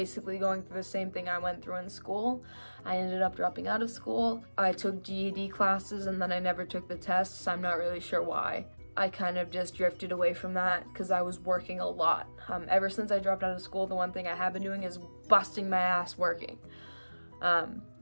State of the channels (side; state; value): both; inverted; correlation -1.00